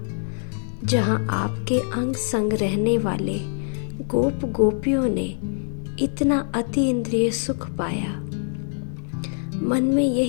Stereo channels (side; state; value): right; silent; 63 dB below the other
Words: जहां आपके अंग संग रहने वाले गोप गोपियों ने इतना अति इंद्रिय सुख पाया। मन में